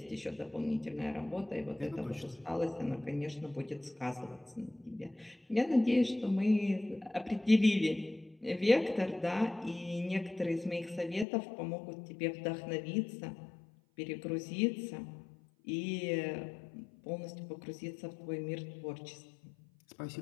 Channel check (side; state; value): right; drops out; at 11.2 s